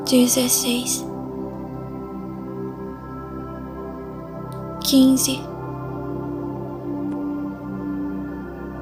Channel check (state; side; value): identical; both; correlation 1.00